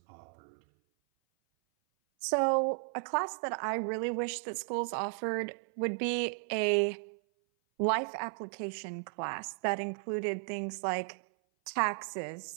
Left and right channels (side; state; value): left; silent; 55 dB below the other